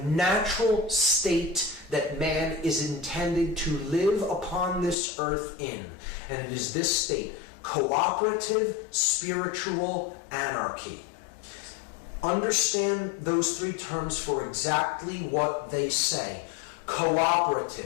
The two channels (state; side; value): drops out; right; at 5.0 s